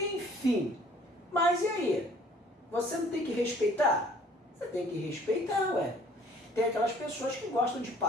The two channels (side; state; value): both; normal; correlation 0.55